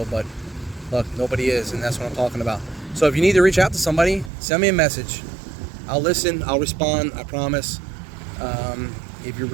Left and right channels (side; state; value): left; drops out; at 4.3 s